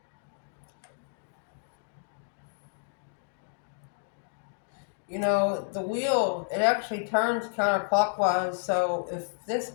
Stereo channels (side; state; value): right; silent; digital silence